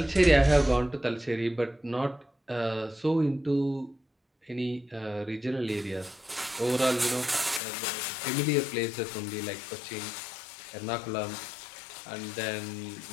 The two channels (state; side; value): drops out; right; at 7.6 s